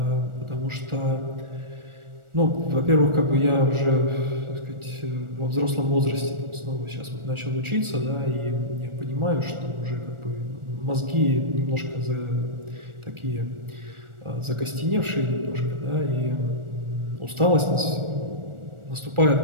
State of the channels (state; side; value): late; left; 1.4 ms